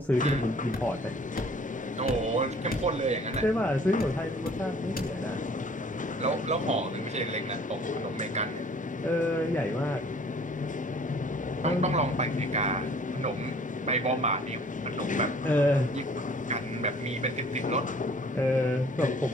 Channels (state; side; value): normal; both; correlation 0.54